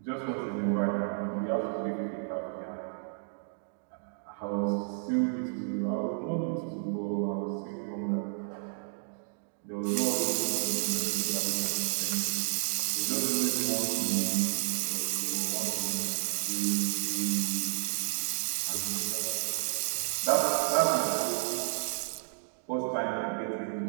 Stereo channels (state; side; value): silent; left; digital silence